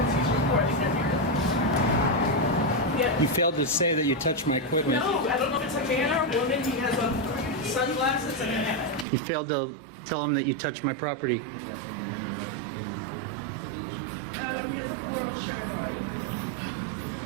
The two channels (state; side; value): drops out; left; at 9.1 s